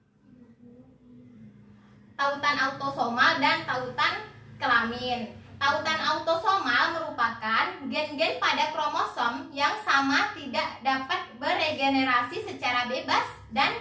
Tautan autosomal dan tautan kelamin. Tautan autosomal merupakan gen-gen pada kromosom yang sama tidak dapat beregenerasi secara bebas dan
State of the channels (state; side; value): identical; both; correlation 1.00